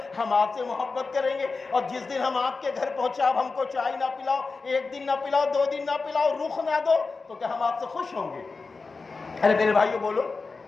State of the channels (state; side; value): quieter; right; 4.2 dB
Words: ہم آپ سے محبت کریں گے۔ اور جس دن ہم آپ کے گھر پہنچے آپ ہم کو چائے نہ پلاؤ، ایک دن نہ پلاؤ، 2 دن نہ پلاؤ، رخ نہ دو، تو کیا ہم آپ سے خوش ہوں گے؟ ارے میرے بھائیو بولو،